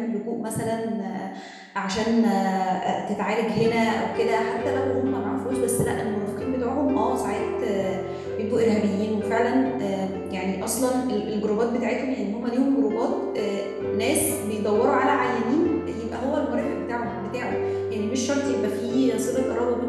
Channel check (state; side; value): identical; both; correlation 1.00